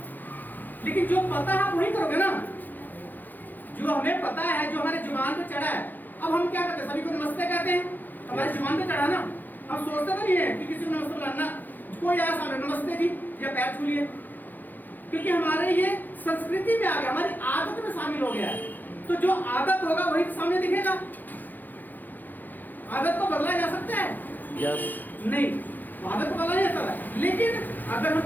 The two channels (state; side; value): late; right; 0.086 ms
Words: लेकिन जो पता है आप वही करोगे ना, जो हमें पता है, जो हमारे जुबान पे चढ़ा है। अब हम क्या करते हैं, सभी को नमस्ते कहते हैं, हमारे जुबान पे चढ़ा ना। हम सोचते तो नहीं है कि किसी को नमस्ते बुलाना, कोई आया सामने नमस्ते जी या पैर छू लिए, क्योंकि हमारे ये संस्कृति में आ गया, हमारी आदत में शामिल हो गया है। तो जो आदत होगा वही सामने दिखेगा। आदत को बदला जा सकता है? यस। नहीं, आदत को बदला नहीं जा सकता, लेकिन अगर हम